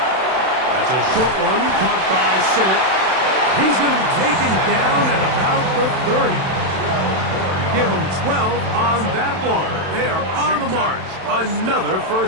That's a short one, caught by Sinnott. He's going to be taken down at about the 30. Give him 12 on that one. They are on the march. Another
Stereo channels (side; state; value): left; late; 31 ms